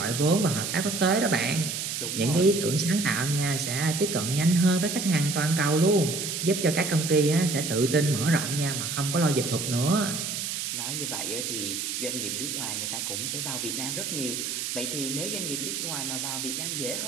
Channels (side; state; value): right; noise; hiss, 3 dB below the sound